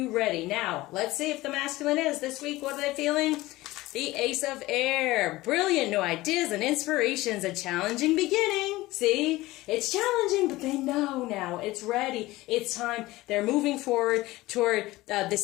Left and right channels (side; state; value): right; quieter; 18.7 dB